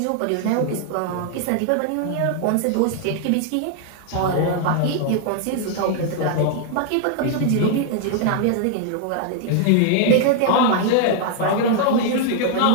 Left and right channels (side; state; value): both; different; correlation 0.00